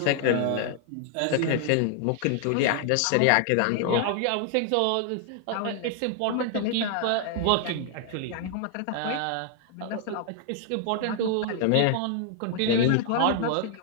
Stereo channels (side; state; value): both; different; correlation 0.00